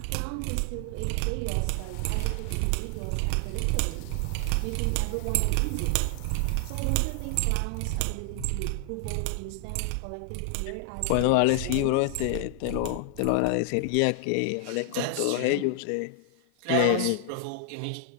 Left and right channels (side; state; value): both; different; correlation 0.00